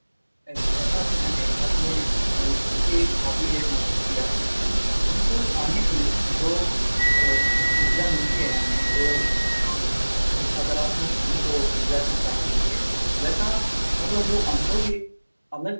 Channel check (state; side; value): inverted; both; correlation -1.00